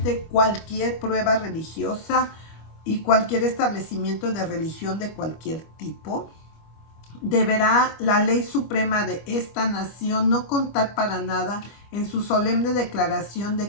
cualquier prueba religiosa y cualquier establecimiento de religión de cualquier tipo. Deberá la ley suprema de esta nación no contar para nada en su solemne declaración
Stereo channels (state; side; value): late; right; 25 ms